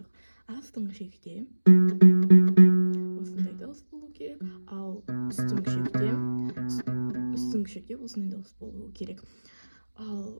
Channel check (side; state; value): both; inverted; correlation -1.00